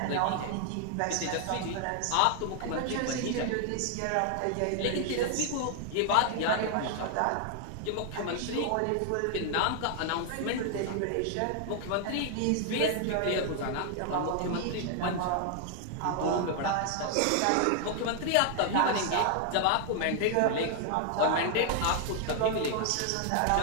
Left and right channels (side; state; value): both; different; correlation 0.00